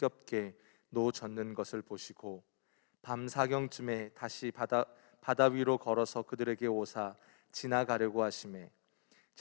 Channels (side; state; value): right; silent; 51 dB below the other